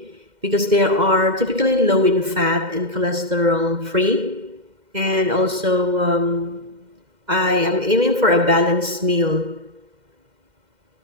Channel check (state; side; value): late; left; 2.1 ms